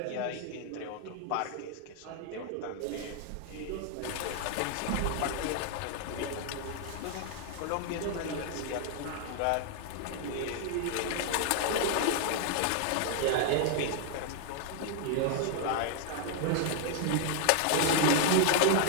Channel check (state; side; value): different; both; correlation 0.00